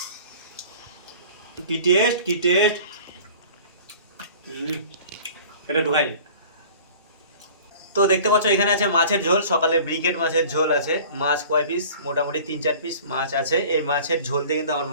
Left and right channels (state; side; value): inverted; both; correlation -0.45